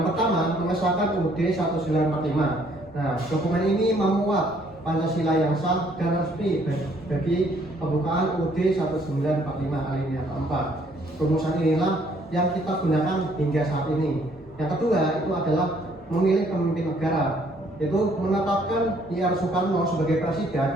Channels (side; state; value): both; normal; correlation 0.64